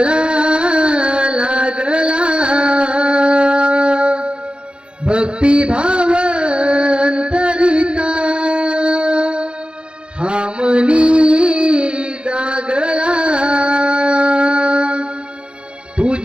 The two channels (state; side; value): late; left; 0.054 ms